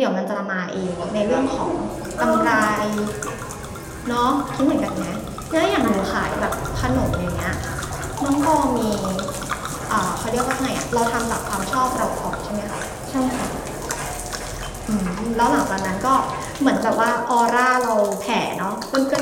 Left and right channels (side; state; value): both; identical; correlation 1.00